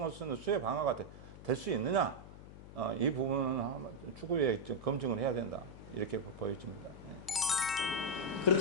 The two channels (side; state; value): left; noise; hum, 15 dB below the sound